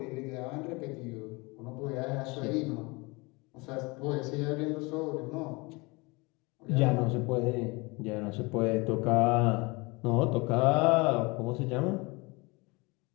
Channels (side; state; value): right; quieter; 26.1 dB